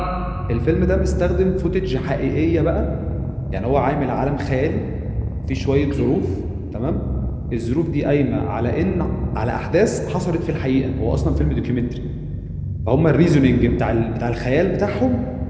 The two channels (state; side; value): identical; both; correlation 1.00